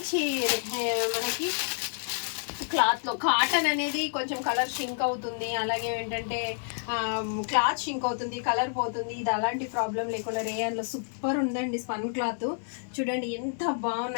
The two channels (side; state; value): right; silent; digital silence